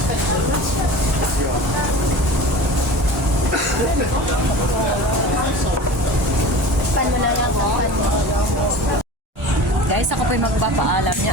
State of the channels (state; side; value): normal; both; correlation 0.37